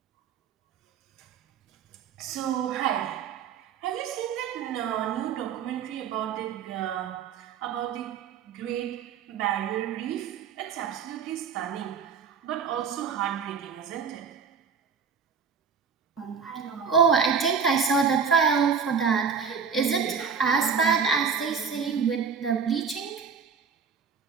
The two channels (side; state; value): left; quieter; 6.3 dB